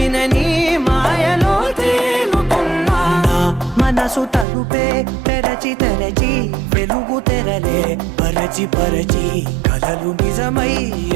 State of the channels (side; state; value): left; drops out; at 4.5 s